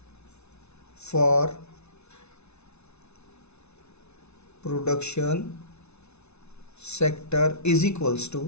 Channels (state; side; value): late; right; 0.81 ms